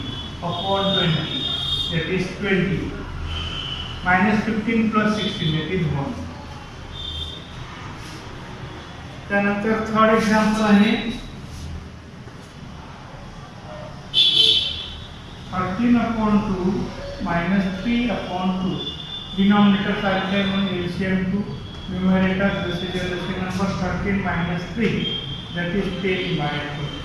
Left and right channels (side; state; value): both; identical; correlation 1.00